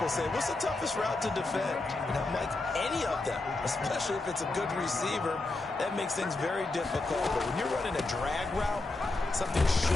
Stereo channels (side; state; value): right; quieter; 3.1 dB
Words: say, what's the toughest route to defend? And I'm like, any of them, especially if it's a good receiver, that makes things very difficult. But when you're running a drag route, something